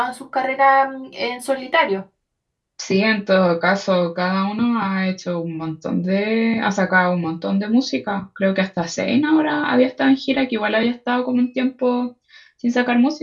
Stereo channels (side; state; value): both; identical; correlation 1.00